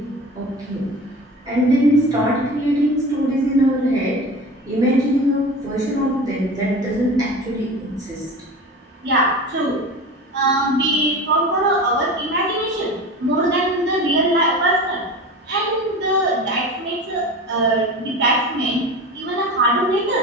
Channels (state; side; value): normal; both; correlation 0.33